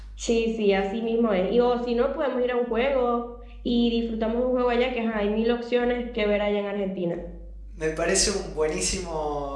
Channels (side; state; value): both; identical; correlation 1.00